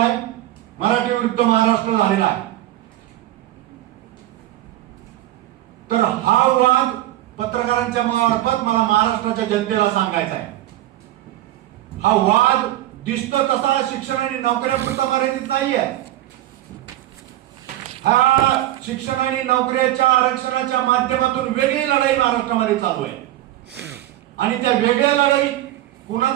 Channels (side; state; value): left; quieter; 14.6 dB